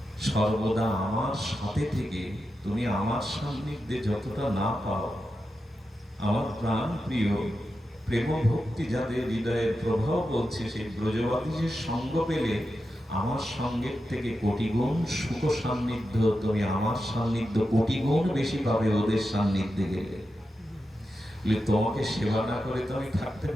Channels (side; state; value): both; normal; correlation 0.89